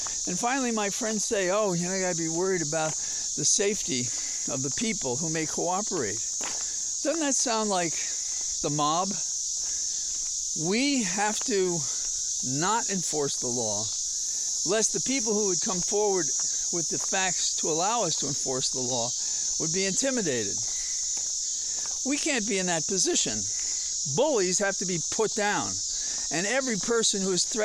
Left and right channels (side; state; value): both; identical; correlation 1.00